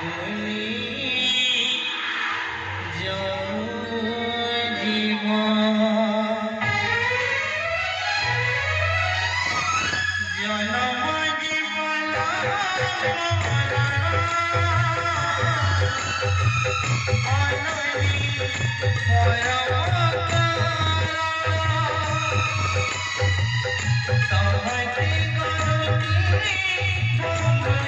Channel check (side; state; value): both; identical; correlation 1.00